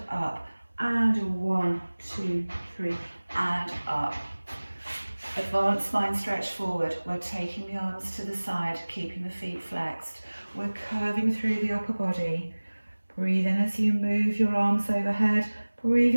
up and 1, 2, 3 and up. Advanced spine stretch forward. We're taking the arms to the side, keeping the feet flexed. We're curving through the upper body. Breathe in as you move your arms overhead.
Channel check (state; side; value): inverted; both; correlation -1.00